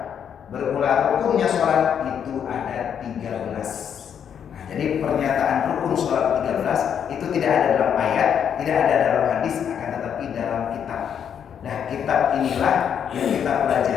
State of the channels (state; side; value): quieter; right; 8.3 dB